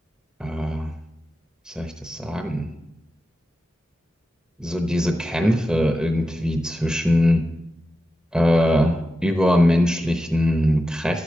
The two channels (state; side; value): normal; both; correlation 0.91